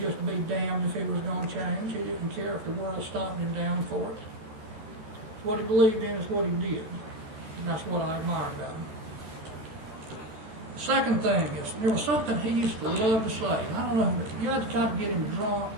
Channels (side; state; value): left; late; 14 ms